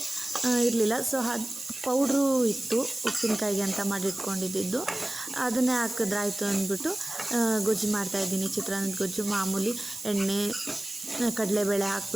ಇರಲಿಲ್ಲ. ಸೊ ಅದು ಪೌಡ್ರು ಇತ್ತು ಉಪ್ಪಿನಕಾಯಿಗೆ ಅಂತ ಮಾಡಿಟ್ಕೊಂಡಿದ್ದು, ಅದನ್ನೇ ಹಾಕಿದ್ರಾಯ್ತು ಅಂದ್ಬಿಟ್ಟು ಗೊಜ್ಜು ಮಾಡ್ತಾಯಿದ್ದೀನಿ. ಚಿತ್ರಾನ್ನದ ಗೊಜ್ಜು ಮಾಮೂಲಿ ಎಣ್ಣೆ, ಕಡಲೆಬೇಳೆ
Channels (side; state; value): right; noise; hiss, 11 dB below the sound